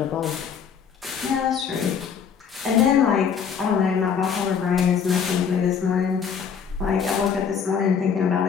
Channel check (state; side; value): quieter; right; 7.0 dB